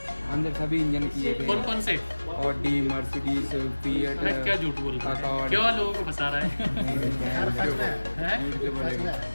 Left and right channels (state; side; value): inverted; both; correlation -1.00